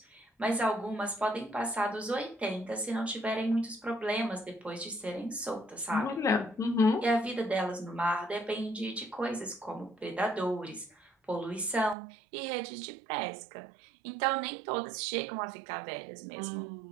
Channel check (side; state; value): left; drops out; at 12.0 s